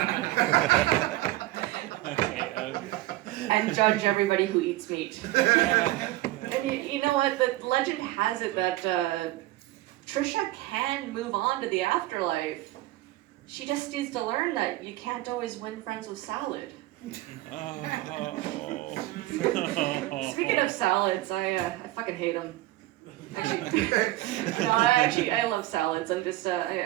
And judge everybody who eats meat. And you know what? The legend has it that Trisha can move on to the afterlife. She just needs to learn that you can't always win friends with salad. Speaking of salads, I fucking hate them. Actually, I love salads. I'm just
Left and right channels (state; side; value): quieter; left; 17.2 dB